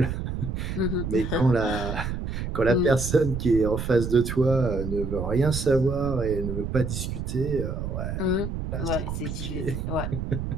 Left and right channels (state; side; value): noise; right; rumble, 4 dB below the sound